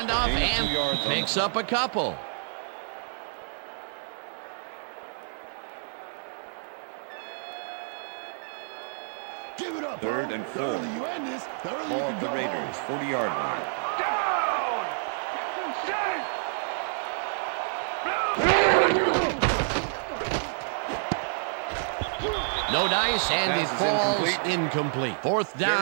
and picks up a couple. Third and 4. Ball at the Raiders' 40-yard line. No dice, and it falls incomplete. 4th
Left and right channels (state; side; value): silent; left; digital silence